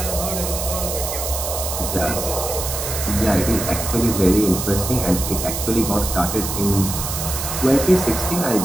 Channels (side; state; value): right; noise; hiss, 4 dB below the sound